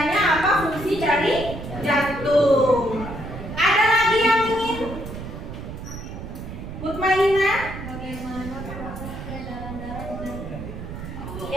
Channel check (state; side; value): noise; right; rumble, 9 dB below the sound